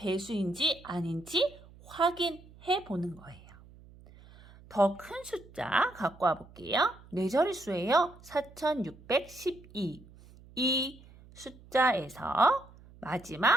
아닌지 확인해 보는 거예요. 더 큰 숫자 갖고 와 볼게요. 4자릿수예요. 4,612. 이 숫자에서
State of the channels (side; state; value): right; noise; hum, 22 dB below the sound